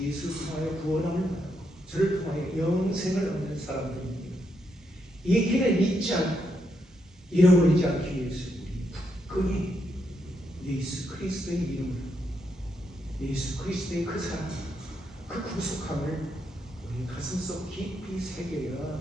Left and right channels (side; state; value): both; normal; correlation 0.80